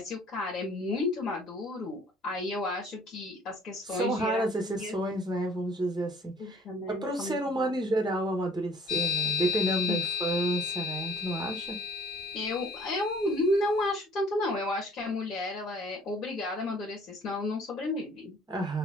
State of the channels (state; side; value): normal; both; correlation 0.55